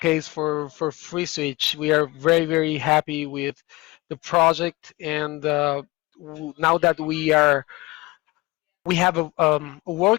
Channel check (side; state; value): right; quieter; 21.6 dB